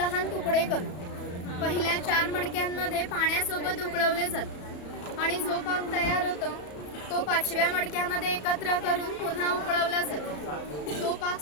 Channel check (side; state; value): right; late; 34 ms